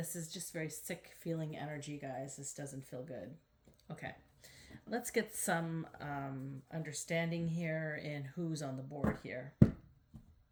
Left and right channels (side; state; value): both; identical; correlation 1.00